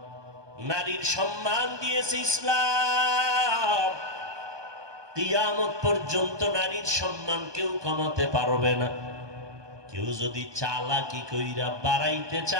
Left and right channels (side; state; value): left; late; 1.2 ms